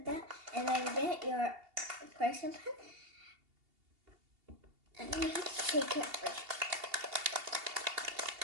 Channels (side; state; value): left; late; 2.8 ms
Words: that, and then get your correction pen and you take it first.